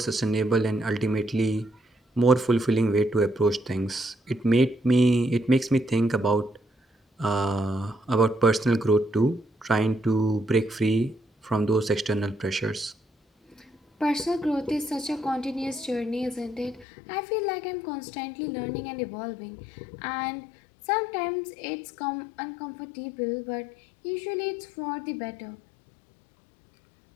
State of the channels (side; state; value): right; drops out; at 16.9 s